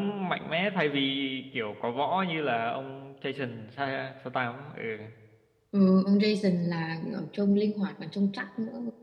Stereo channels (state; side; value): identical; both; correlation 1.00